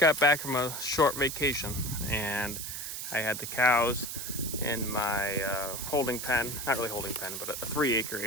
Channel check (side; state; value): right; noise; hiss, 6 dB below the sound